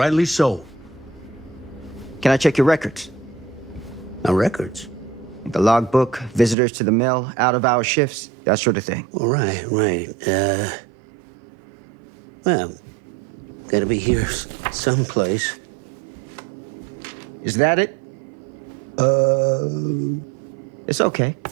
so. Can I check your records? My records. The logbook, visitors to the mill, out-of-hour shifts, that sort of thing. All right, right. Well, gotta be here someplace. Is that it? It's okay.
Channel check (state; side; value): drops out; left; at 6.6 s